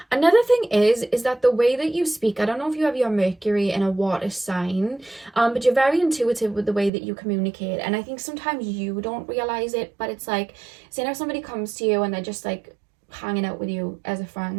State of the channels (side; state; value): left; drops out; at 6.9 s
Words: Another thing is that the way that you speak, I don't know if you have your Mercury in a water sign, but you're very intuitive with the way that you communicate. And I think sometimes you don't realize it, but it's like, say now somebody comes to you and they're just like hanging out with you as a